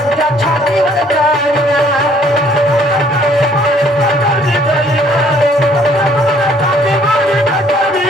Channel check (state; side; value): normal; both; correlation 0.61